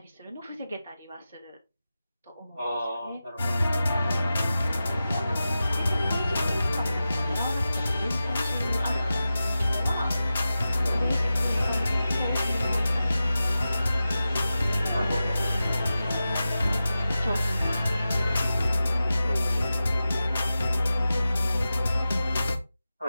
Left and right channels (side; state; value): both; inverted; correlation -0.93